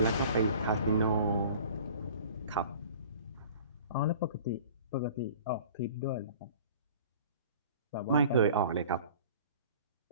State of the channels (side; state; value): both; inverted; correlation -0.46